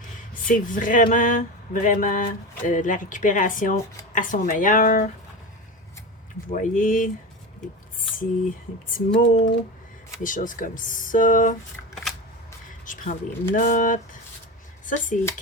C'est vraiment, vraiment de la récupération à son meilleur. Vous voyez, des petits mots, des choses comme ça. Je prends des notes. Ça, c'est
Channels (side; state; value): both; normal; correlation 0.24